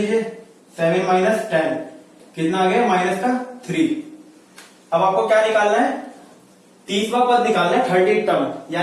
7 माइनस 10 कितना आ गया? माइनस का 3। अब आपको क्या निकालना है? 30वां पद निकालना है, 30 टर्म,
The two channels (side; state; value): both; identical; correlation 1.00